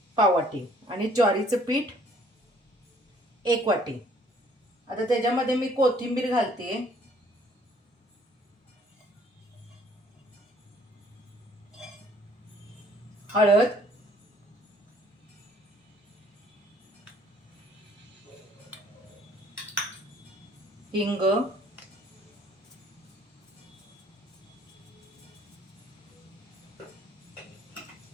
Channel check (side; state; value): both; normal; correlation 0.60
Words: पाव वाटी आणि ज्वारीचं पीठ एक वाटी. आता त्याच्यामध्ये मी कोथिंबीर घालते, हळद, हिंग,